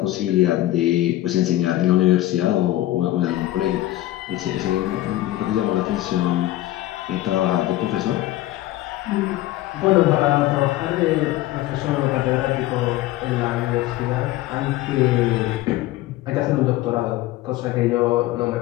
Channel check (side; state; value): right; quieter; 15.6 dB